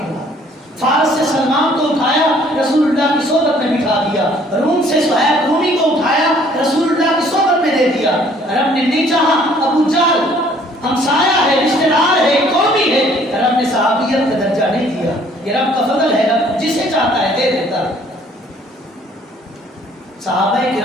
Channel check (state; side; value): normal; both; correlation 0.59